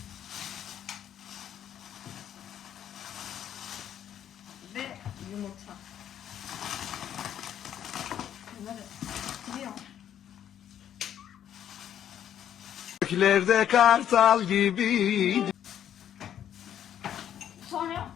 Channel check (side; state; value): right; quieter; 10.1 dB